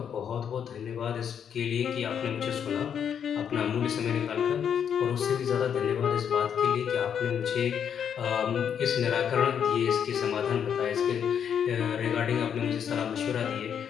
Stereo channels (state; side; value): quieter; right; 8.1 dB